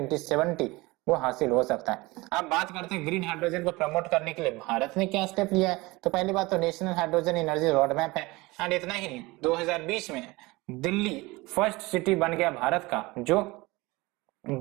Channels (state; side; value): quieter; left; 22.2 dB